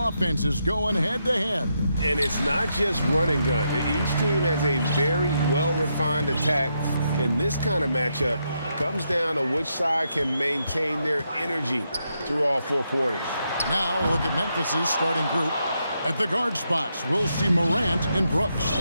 offenses going head-to-head. And it's not just run and gun. Each team has a very well-refined attack. And this kind of matchup comes down to which side can maintain their energy through all four quarters. Now look at Memphis's starting group. At the guard spots, we'll see Morant and Brooks.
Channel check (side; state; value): both; inverted; correlation -0.81